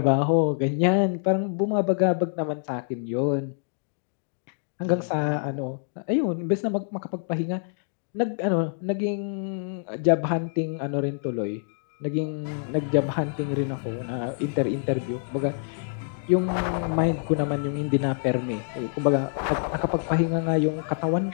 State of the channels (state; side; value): silent; right; digital silence